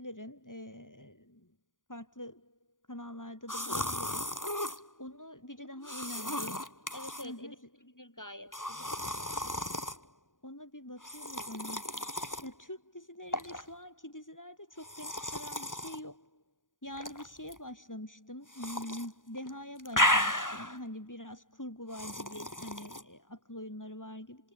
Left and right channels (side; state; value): right; late; 0.88 ms